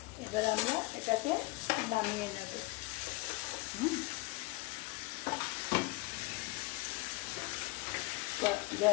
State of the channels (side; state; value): right; quieter; 23.7 dB